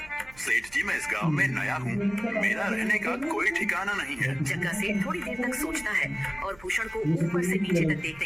सेठ जी, मैं इस गांव में नया हूँ, मेरा रहने का कोई ठिकाना नहीं है। जग्गा सेठ थोड़ी देर तक सोचता है और भूषण को ऊपर से नीचे तक देखने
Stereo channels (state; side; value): noise; right; hum, 24 dB below the sound